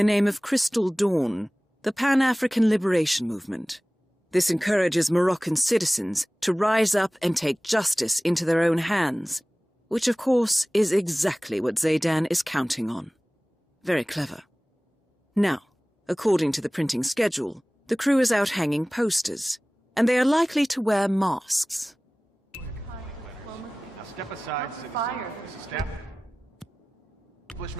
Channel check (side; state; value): both; normal; correlation 0.98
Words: name of Crystal Dawn, the Pan-African Liberation Movement. This encourages Moroccan citizens to rise up and take justice into their own hands, which of course is exactly what Zaydan is counting on. Very clever. Now, according to the printing schedule, the crew is out hanging posters, and they are likely to wear masks. Now step aside, citizen. Mrs. Step.